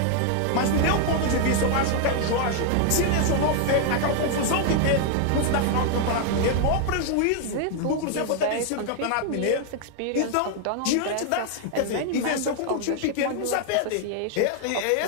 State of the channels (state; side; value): different; both; correlation 0.00